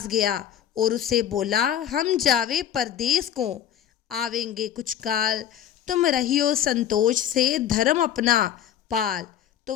गया और उससे बोला हम जावे परदेश को, आवेंगे कुछ काल, तुम रहियो संतोष से धर्म अपना पाल। तो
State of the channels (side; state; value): right; quieter; 10.3 dB